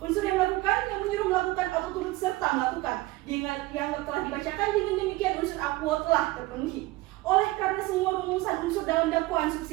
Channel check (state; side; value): quieter; left; 19.9 dB